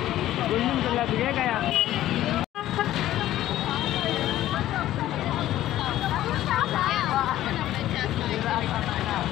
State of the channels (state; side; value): quieter; right; 13.8 dB